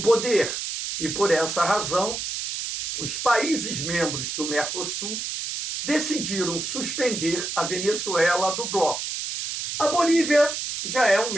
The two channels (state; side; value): noise; right; hiss, 4 dB below the sound